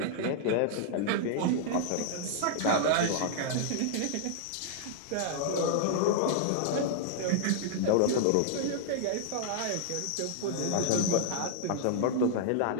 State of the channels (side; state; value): both; different; correlation -0.01